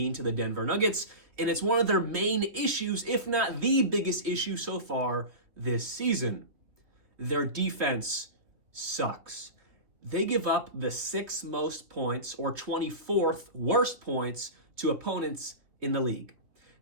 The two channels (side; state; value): left; late; 3.1 ms